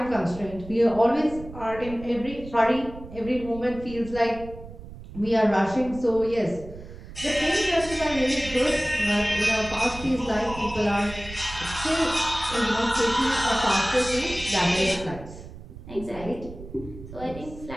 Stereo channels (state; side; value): noise; right; rumble, 15 dB below the sound